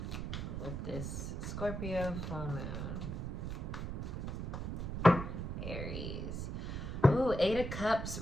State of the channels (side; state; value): right; noise; rumble, 4 dB below the sound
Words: with this Scorpio full moon? Aries. Ooh, Eight of Cups